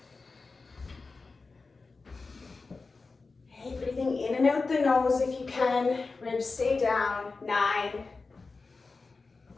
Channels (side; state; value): right; quieter; 4.0 dB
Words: Okay, breathing in and out the nose if you can. Ribs stay down. 9.